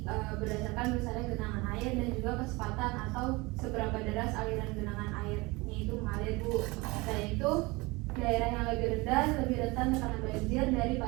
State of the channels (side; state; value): left; quieter; 24.0 dB